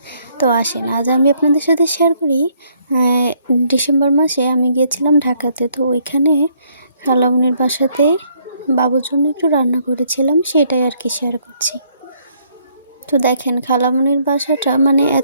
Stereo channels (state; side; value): inverted; both; correlation -0.68